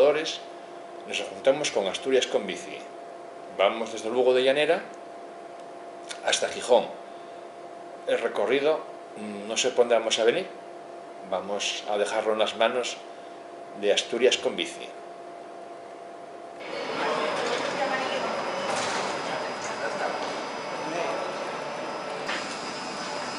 nos juntamos con Asturias con Bici. Vamos desde Lugo de Llanera hasta Gijón. El recorrido, no sé por dónde vamos a venir, vamos a dejarlo en las manos de Asturias con Bici.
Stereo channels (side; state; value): both; identical; correlation 1.00